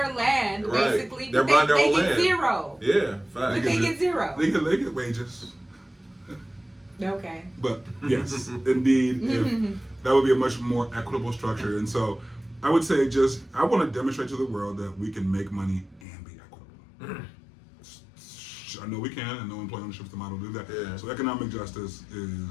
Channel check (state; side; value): drops out; right; at 16.0 s